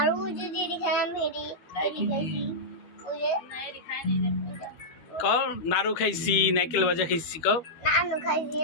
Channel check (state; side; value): late; right; 12 ms